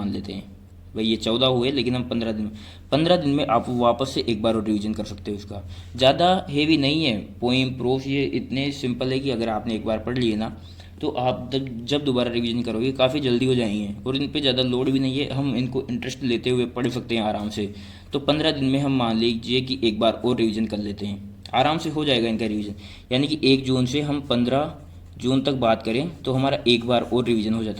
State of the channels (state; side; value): identical; both; correlation 1.00